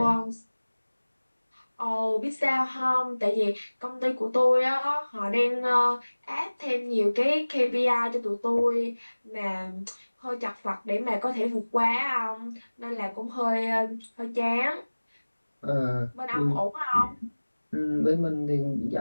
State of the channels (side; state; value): both; inverted; correlation -1.00